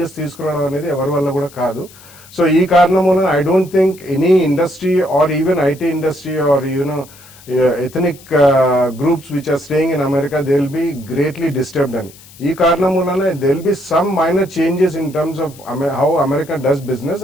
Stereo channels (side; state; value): left; noise; hiss, 22 dB below the sound